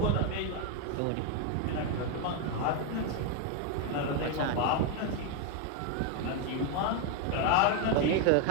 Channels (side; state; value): both; different; correlation 0.01